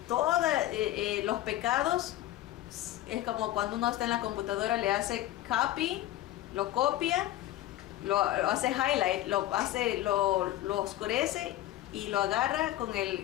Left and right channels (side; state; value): right; quieter; 14.6 dB